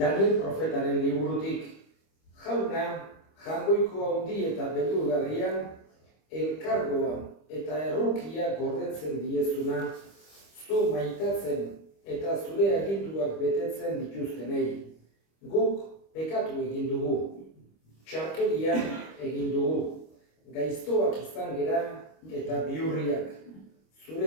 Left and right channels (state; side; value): late; right; 25 ms